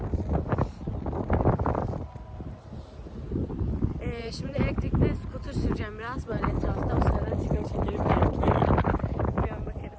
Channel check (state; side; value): identical; both; correlation 1.00